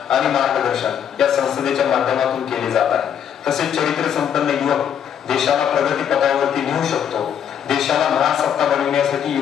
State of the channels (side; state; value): right; quieter; 8.8 dB